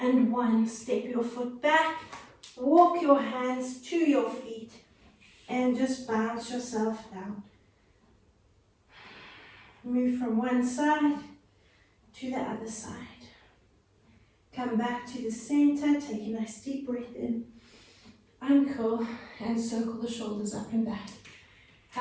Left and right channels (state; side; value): identical; both; correlation 1.00